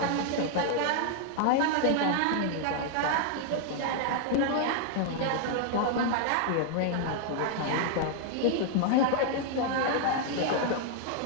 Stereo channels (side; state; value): both; different; correlation 0.00